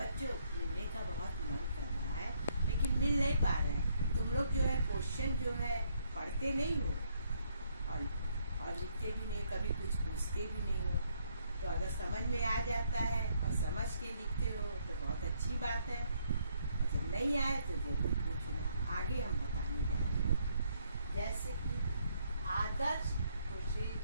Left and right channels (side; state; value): both; inverted; correlation -0.70